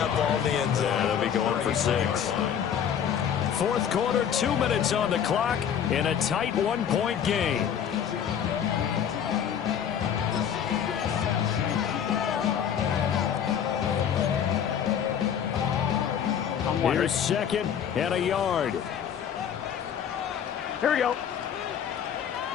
ball in the end zone. Yeah, they'll be going for 6. 4th quarter, 2 minutes on the clock in a tight 1-point game. Here's 2nd and a yard. Here we go.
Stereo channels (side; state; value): right; quieter; 8.6 dB